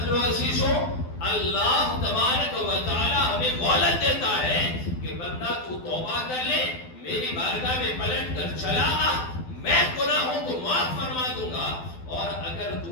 لو عزیزو، اللہ تبارک و تعالی ہمیں مہلت دیتا ہے کہ بندہ تو توبہ کر لے، میری بارگاہ میں پلٹ کر چلا آ، میں گناہوں کو معاف فرما دوں گا، اور اگر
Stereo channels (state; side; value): late; right; 12 ms